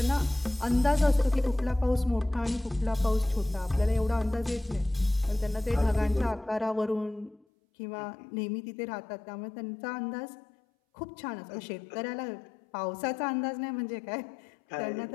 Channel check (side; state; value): right; drops out; at 7.4 s